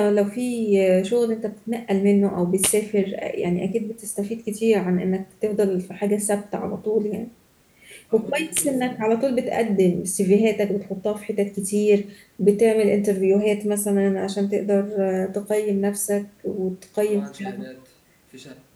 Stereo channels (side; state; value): both; identical; correlation 1.00